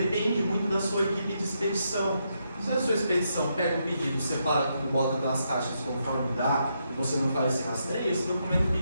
muito da sua equipe de expedição. Se a sua expedição pega o pedido, separa tudo, bota das caixas conforme dá, e você não faz esse rastreio, esse documento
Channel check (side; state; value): both; inverted; correlation -0.80